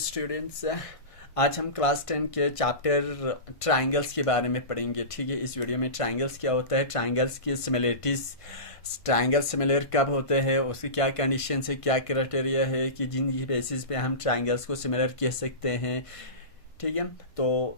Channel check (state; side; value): late; right; 1.5 ms